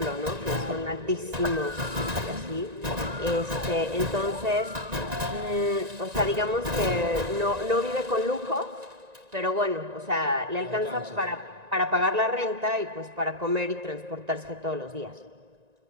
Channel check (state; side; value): late; left; 1.9 ms